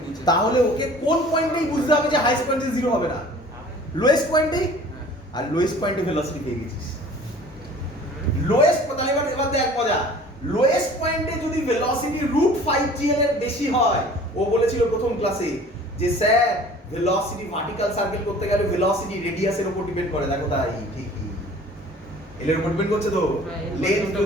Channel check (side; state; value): both; normal; correlation 0.47